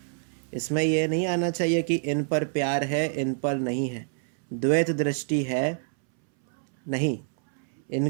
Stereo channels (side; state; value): left; silent; 60 dB below the other